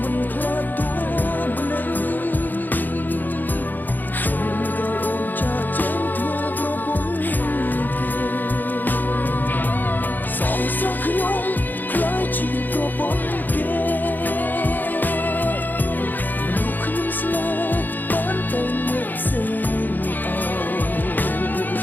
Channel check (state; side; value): late; right; 0.087 ms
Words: ខ្ញុំខ្លាចជាប្រពន្ធគេមនុស្សខ្ញុំស្នេហ៍បានតែអ្នកផ្សេង